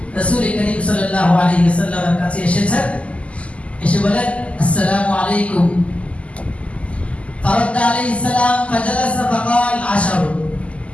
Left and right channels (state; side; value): late; right; 0.062 ms